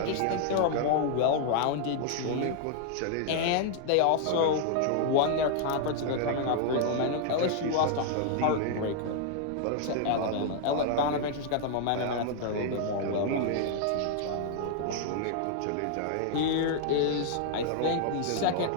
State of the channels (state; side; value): different; both; correlation -0.01